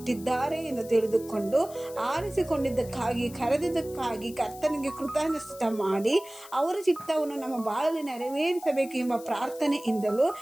ಎಂದು ತಿಳಿದುಕೊಂಡು ಆರಿಸಿಕೊಂಡಿದ್ದಕ್ಕಾಗಿ, ಕರೆದಿದ್ದಕ್ಕಾಗಿ ಕರ್ತನಿಗೆ ಕೃತಜ್ಞತೆ ಮಾಡಿ ಅವರ ಚಿತ್ತವನ್ನು ನಮ್ಮ ಬಾಳಲ್ಲಿ ನೆರವೇರಿಸಬೇಕು ಎಂಬ ಪ್ರಾರ್ಥನೆಯಿಂದಲೂ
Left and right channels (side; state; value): left; noise; hiss, 18 dB below the sound